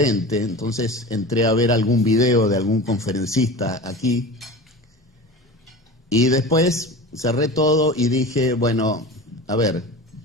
entonces entré a ver algún video de algún conferencista aquí y después cerré todo y dije, bueno, a ver,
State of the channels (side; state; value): both; normal; correlation 0.33